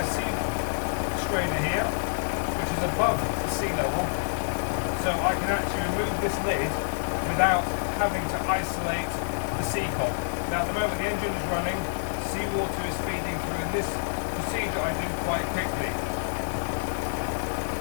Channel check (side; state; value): right; silent; digital silence